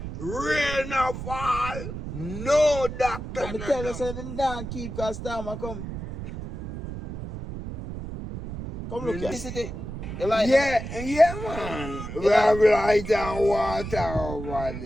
rain a fall, no doctor But me no tell you, down. so them don't keep because time will come. Come look here. You like Yeah, man. We have light and water over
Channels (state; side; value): noise; right; rumble, 8 dB below the sound